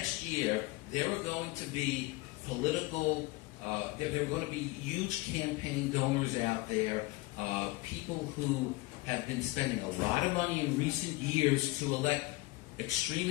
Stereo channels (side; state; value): right; quieter; 21.6 dB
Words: year there are going to be political, there are going to be huge campaign donors out there, people who have been spending a lot of money in recent years to elect